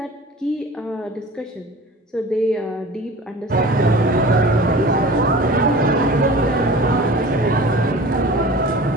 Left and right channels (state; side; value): normal; both; correlation 0.40